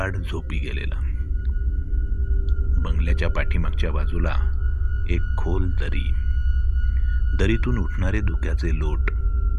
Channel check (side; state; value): both; identical; correlation 1.00